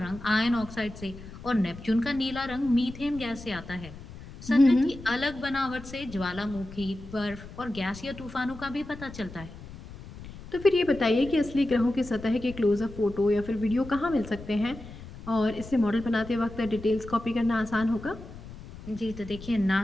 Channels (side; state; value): left; noise; rumble, 15 dB below the sound